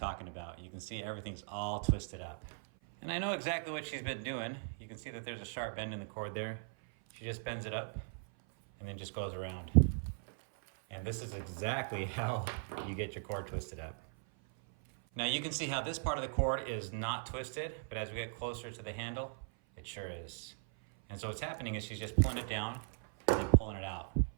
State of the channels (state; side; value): silent; left; 52 dB below the other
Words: about. You can see everything's all twisted up. And I know exactly what she's been doing. You can see that there's a sharp bend in the cord there. She just bends it up and then just goes around. And this is exactly how you get your cord twisted up. Now you can see how this part of the cord is not twisted, but as we get closer to the handle, it sure is. And so what's happening is she's just pulling it down and then pulling it out.